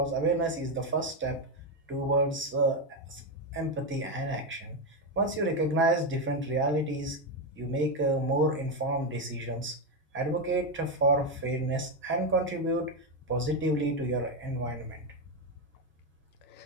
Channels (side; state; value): both; normal; correlation 0.08